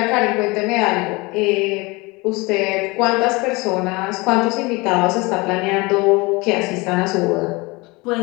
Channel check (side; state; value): right; quieter; 24.6 dB